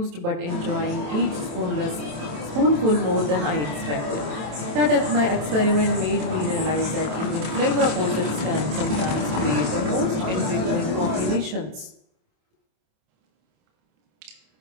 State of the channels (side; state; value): left; late; 27 ms